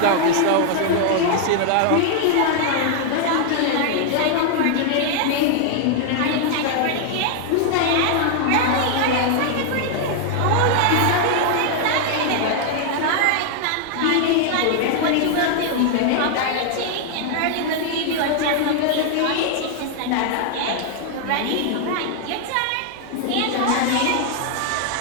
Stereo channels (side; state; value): both; different; correlation 0.00